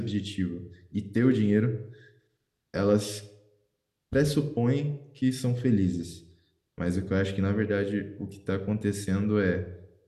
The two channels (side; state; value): both; identical; correlation 1.00